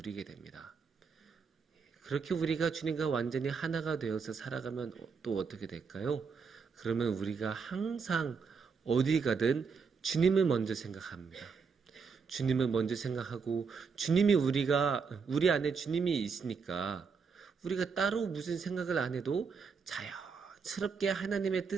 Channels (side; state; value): left; quieter; 5.5 dB